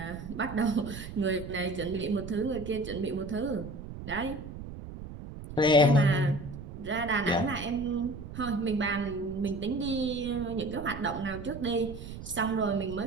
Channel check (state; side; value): noise; right; rumble, 11 dB below the sound